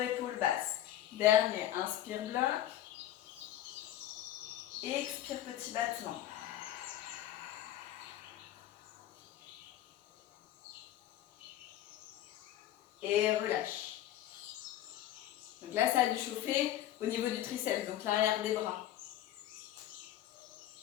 basses. Dernier, inspire, bloc. Expire, petit battement. Et relâche. Donc là, ça a dû chauffer au niveau du triceps, donc l'arrière des bras.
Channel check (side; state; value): right; quieter; 12.7 dB